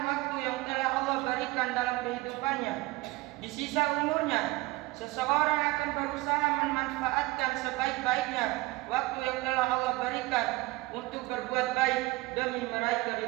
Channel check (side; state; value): left; quieter; 21.3 dB